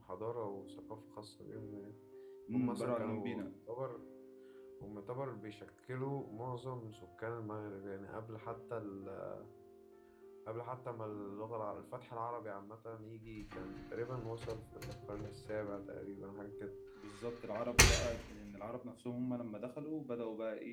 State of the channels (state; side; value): identical; both; correlation 1.00